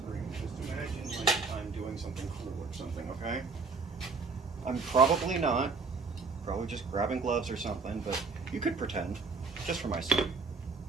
just imagine like I'm doing something cool or something, okay? I'm probably not. Probably just grabbing gloves or something, but you could pretend, just for my sake.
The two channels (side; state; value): left; quieter; 4.5 dB